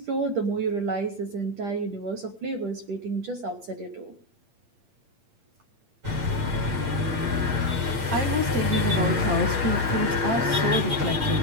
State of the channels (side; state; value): left; late; 8.6 ms